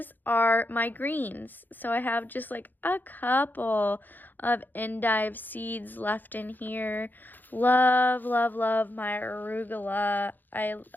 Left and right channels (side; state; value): right; late; 0.087 ms